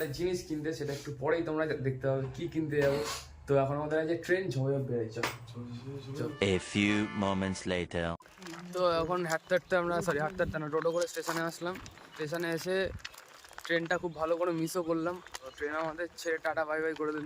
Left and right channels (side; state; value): both; identical; correlation 1.00